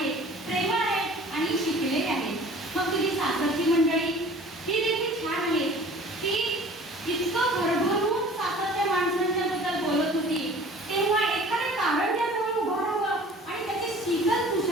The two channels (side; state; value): both; normal; correlation 0.46